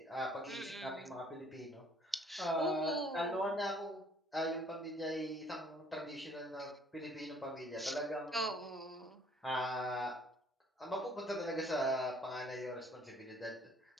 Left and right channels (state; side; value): normal; both; correlation 0.59